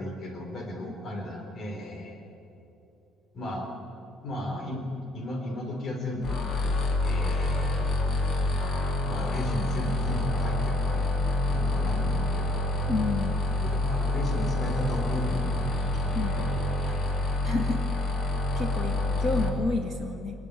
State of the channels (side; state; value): both; normal; correlation 0.63